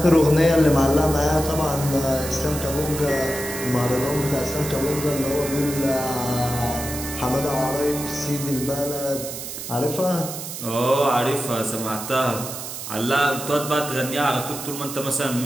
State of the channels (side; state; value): right; noise; hiss, 8 dB below the sound